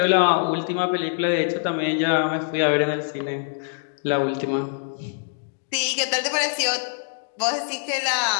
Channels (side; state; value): right; silent; digital silence